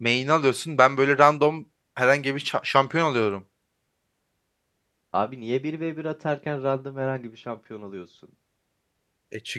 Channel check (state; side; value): identical; both; correlation 1.00